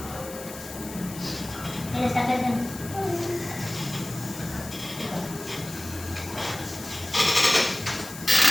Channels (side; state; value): left; noise; hiss, 13 dB below the sound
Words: Ini sampai kan?